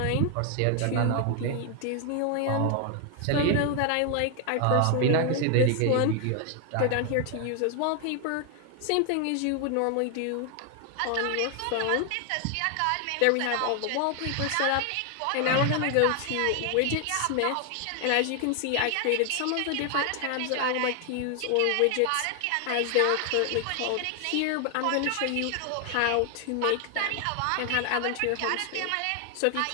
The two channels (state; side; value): different; both; correlation 0.00